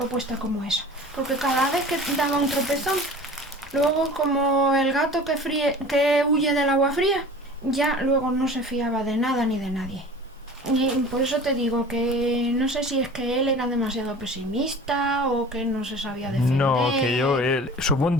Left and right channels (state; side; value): normal; both; correlation 0.41